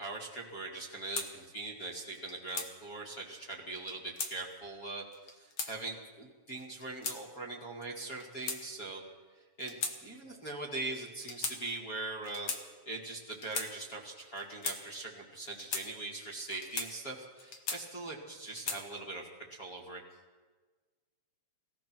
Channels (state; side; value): late; right; 7.2 ms